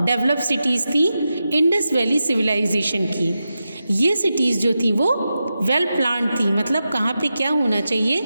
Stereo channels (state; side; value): inverted; both; correlation -0.90